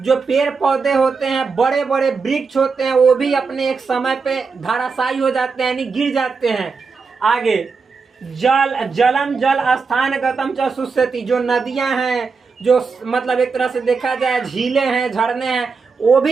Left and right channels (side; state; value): left; quieter; 4.9 dB